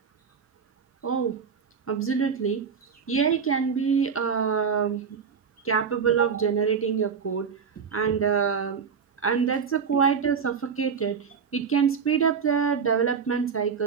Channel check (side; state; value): left; quieter; 6.4 dB